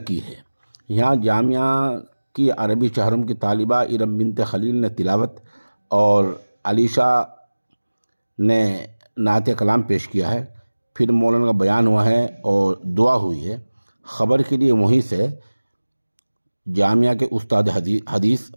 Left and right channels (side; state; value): both; inverted; correlation -1.00